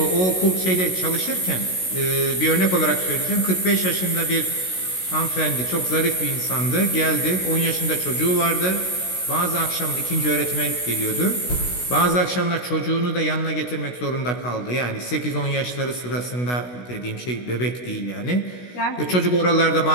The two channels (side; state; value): right; late; 16 ms